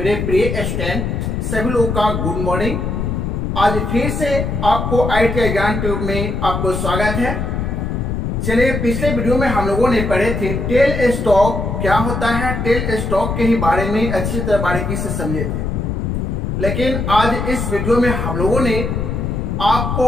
प्रिय स्टूडेंट सभी लोगों का गुड मॉर्निंग। आज फिर से आपको IIT ज्ञान ट्यूब में आपको स्वागत है। चलिए, पिछले वीडियो में हम लोगों ने पढ़े थे टेल स्टॉक क्या होता है। टेल स्टॉक के ही बारे में अच्छी तरह बारीकी से समझे थे, लेकिन आज इस वीडियो में हम लोगों ने आपको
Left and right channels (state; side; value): noise; left; rumble, 2 dB below the sound